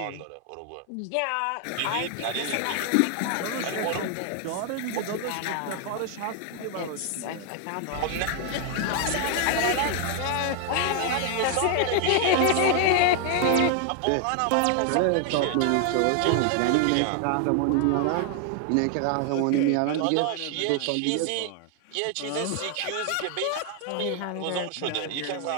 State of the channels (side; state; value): both; different; correlation 0.00